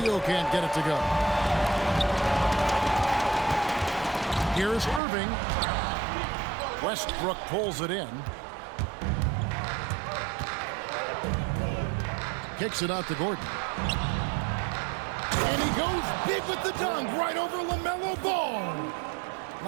can't get it to go. Here's Irving. Westbrook pulls it in. Kicks it out to Gordon. And he goes big with the dunk right over LaMelo Ball.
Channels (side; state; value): left; drops out; at 5.0 s